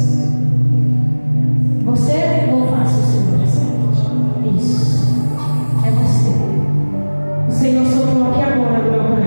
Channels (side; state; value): both; inverted; correlation -1.00